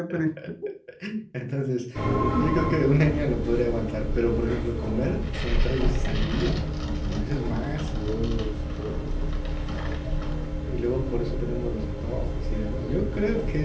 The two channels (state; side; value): identical; both; correlation 1.00